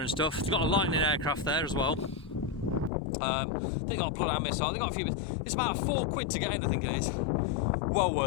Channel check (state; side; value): drops out; right; at 2.9 s